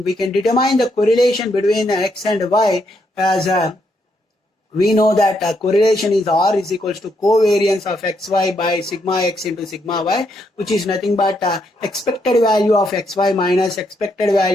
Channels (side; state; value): both; normal; correlation 0.77